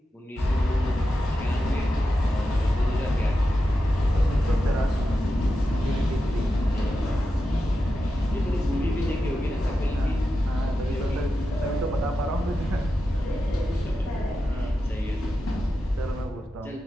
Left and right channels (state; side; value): normal; both; correlation 0.90